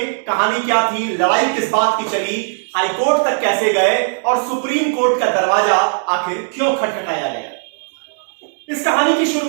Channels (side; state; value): left; silent; digital silence